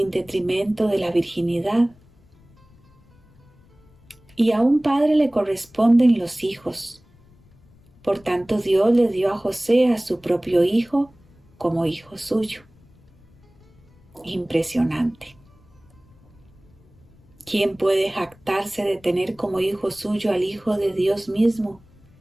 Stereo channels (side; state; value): left; noise; rumble, 29 dB below the sound